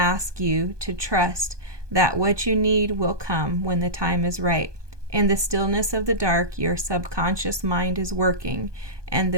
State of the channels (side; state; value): left; late; 1.2 ms